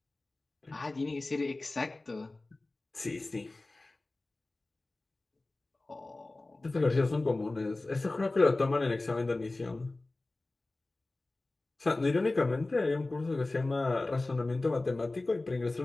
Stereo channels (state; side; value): quieter; right; 3.0 dB